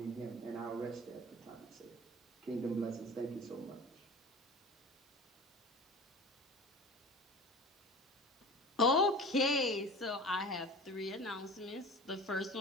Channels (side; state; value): both; normal; correlation 0.38